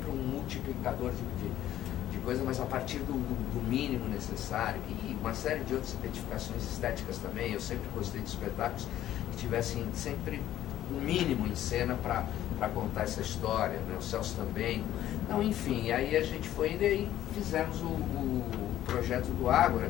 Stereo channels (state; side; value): quieter; right; 12.6 dB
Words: um multiplicador de coisa, mas a partir do mínimo necessário, e uma série de outras identificações estéticas também. Eu sempre gostei de espetáculos que tivessem sempre o mínimo em cena para contar essa história, né? O Celso também. Então, enfim, aí a gente foi indo e aí fizemos o projeto do Ágora